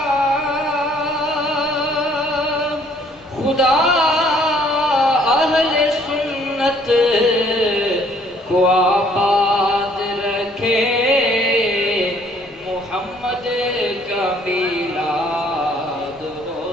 اہل سنت کو آباد رکھے محمد کا میلاد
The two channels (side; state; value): both; normal; correlation 0.61